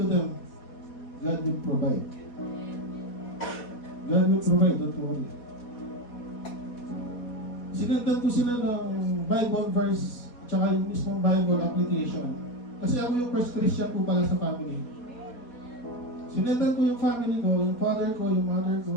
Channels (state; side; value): late; right; 4.2 ms